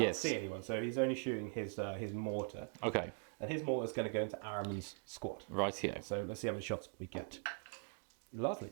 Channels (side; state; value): left; silent; 50 dB below the other